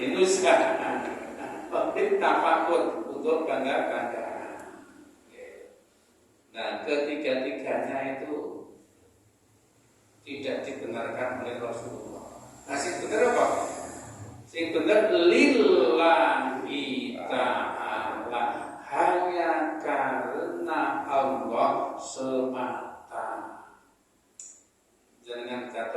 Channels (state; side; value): identical; both; correlation 1.00